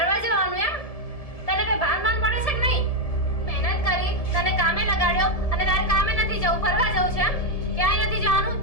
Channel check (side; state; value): right; late; 1.7 ms